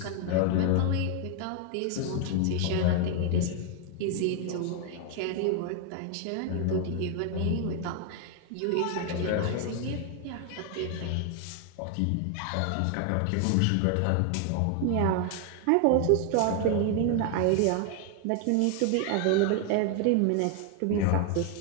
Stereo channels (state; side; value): different; both; correlation 0.00